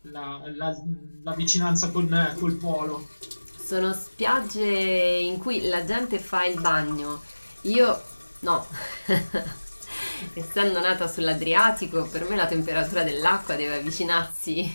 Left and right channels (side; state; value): both; inverted; correlation -1.00